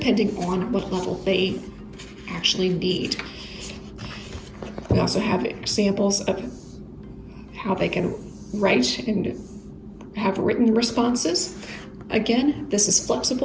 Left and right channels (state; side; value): identical; both; correlation 1.00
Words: on what level they actually need. We also have examples of how they can write and have written responses. Again, this is